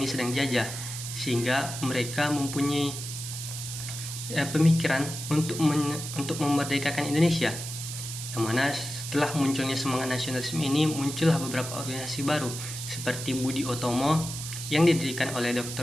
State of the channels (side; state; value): right; noise; hiss, 7 dB below the sound